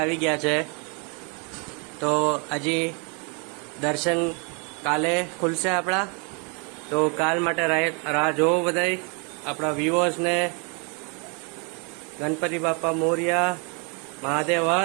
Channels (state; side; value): quieter; left; 35.0 dB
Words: ગયા છે. તો હજી દર્શન કાલે ખુલશે આપણા, તો કાલ માટે રાહ જોવો બધાય આપણા વ્યુઅર્સને. ગણપતિ બાપા મોરિયા, મહાદેવ